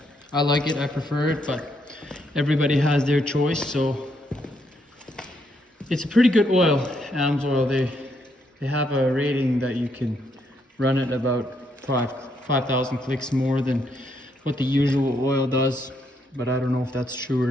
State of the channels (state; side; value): normal; both; correlation 0.75